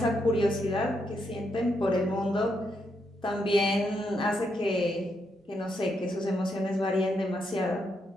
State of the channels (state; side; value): normal; both; correlation 0.79